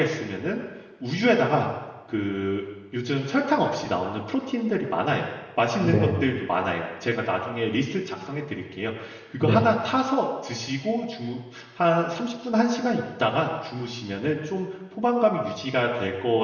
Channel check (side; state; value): both; identical; correlation 1.00